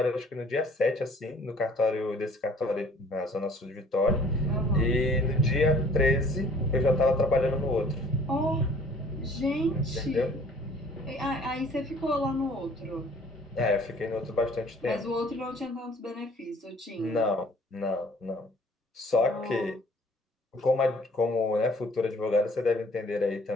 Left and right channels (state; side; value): normal; both; correlation 0.55